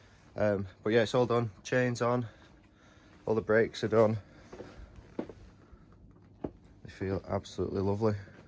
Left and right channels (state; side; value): identical; both; correlation 1.00